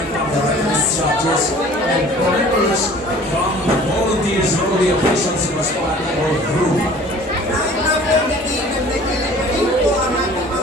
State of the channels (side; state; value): both; normal; correlation 0.48